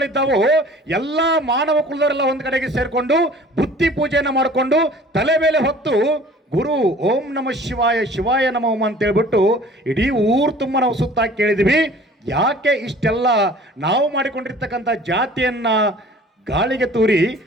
ಎಲ್ಲ ಮಾನವ ಕುಲದವರೆಲ್ಲ ಒಂದು ಕಡೆಗೆ ಸೇರ್ಕೊಂಡು ಬುತ್ತಿ ಪೂಜೆಯನ್ನು ಮಾಡಿಕೊಂಡು ತಲೆ ಮೇಲೆ ಹೊತ್ತು ಗುರು ಓಂ ನಮ ಶಿವಾಯ ಶಿವಾಯ ನಮೋ ಅಂತ ಹೇಳ್ಬಿಟ್ಟು ಇಡೀ ಊರು ತುಂಬ ನಾವು ಸುತ್ತ ಕೇಳಿದ್ವಿ. ಯಾಕೆ ಇಷ್ಟೆಲ್ಲ ನಾವು ಮಾಡಿಕೊಂಡಿರ್ತಕ್ಕಂಥ ಜಾತಿಯನ್ನ ಗಾಳಿಗೆ ತೂರಿ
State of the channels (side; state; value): both; normal; correlation 0.48